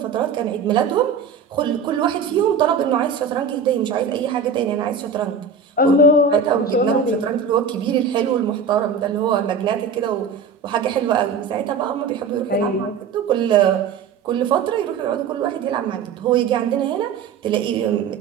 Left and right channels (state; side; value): quieter; left; 5.7 dB